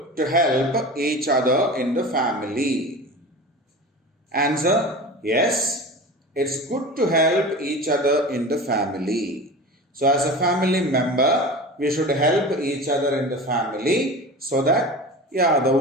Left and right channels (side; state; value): both; normal; correlation 0.32